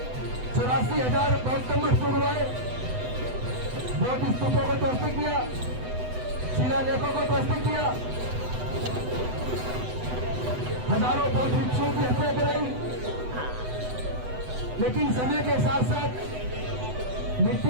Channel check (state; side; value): late; left; 8.0 ms